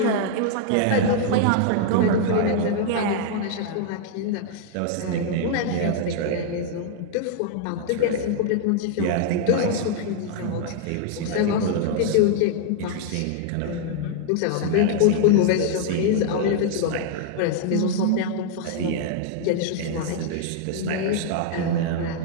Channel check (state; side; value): different; both; correlation -0.01